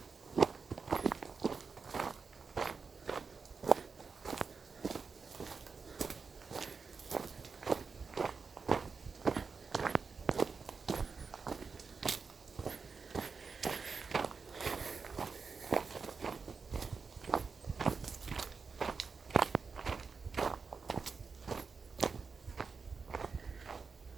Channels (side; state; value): left; quieter; 5.0 dB